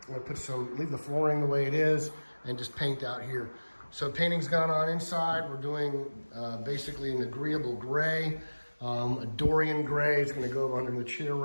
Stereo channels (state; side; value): inverted; both; correlation -1.00